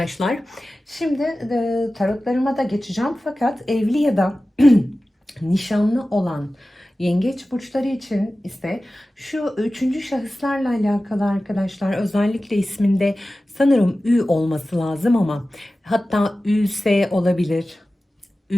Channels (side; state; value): both; normal; correlation 0.95